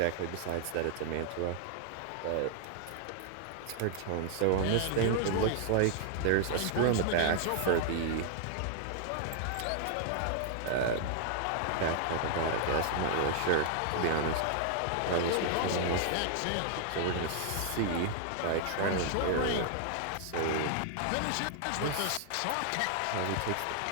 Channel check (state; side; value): different; both; correlation 0.00